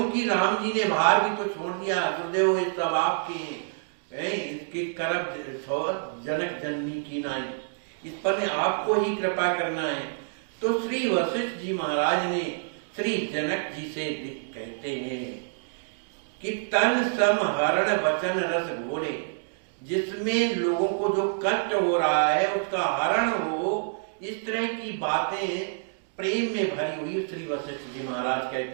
राम जी ने भार भी तो छोड़ दिया। गुरुदेव ये सब आपके इसकी करब जनक जननी की नाई, इस पर ने आपको ही कृपा करना है। तो श्री वशिष्ठ जी महाराज ने श्री जनक जी से कहते हैं कि तन सम हरण वचन रस घोले, जिसमें लोगों को जो कष्ट हो रहा है उसका हरण हो, इस तरह की बातें प्रेम में भरी हुई श्री वशिष्ठ जी महाराज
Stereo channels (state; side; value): silent; left; digital silence